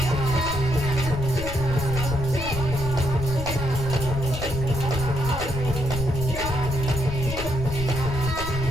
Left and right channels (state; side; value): noise; left; rumble, 6 dB below the sound